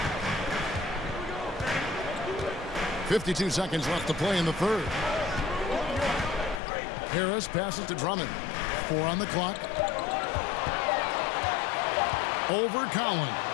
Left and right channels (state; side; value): drops out; right; at 6.6 s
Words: 52 seconds left to play in the third. Harris passes to Drummond. 4 on the clock. Over